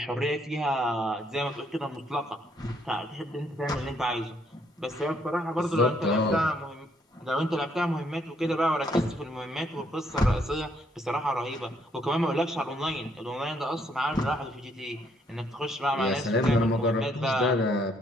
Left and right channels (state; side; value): normal; both; correlation 0.70